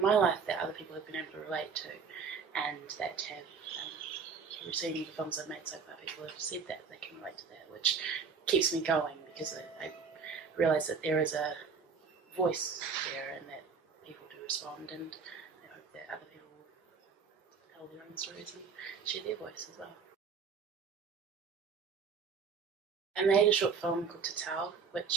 my life that other people have been able to relate to, and that have, through seeing the films I've made so far, people have said that they can relate to that, which keeps me going because I realise that there is a voice there and that people do respond, and I hope that other people will tell their own stories and share their voice as well. I made a short film called Te Tau,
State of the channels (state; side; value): quieter; left; 5.6 dB